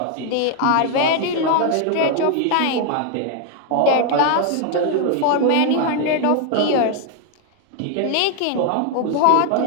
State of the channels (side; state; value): both; different; correlation 0.00